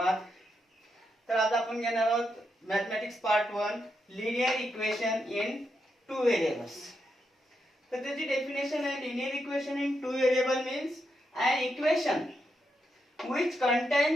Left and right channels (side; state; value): both; normal; correlation 0.83